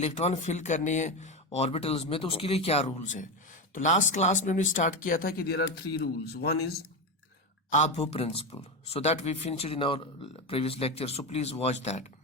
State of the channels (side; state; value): both; normal; correlation 0.15